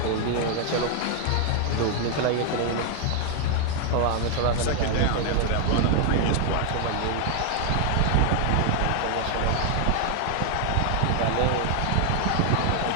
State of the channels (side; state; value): both; different; correlation 0.00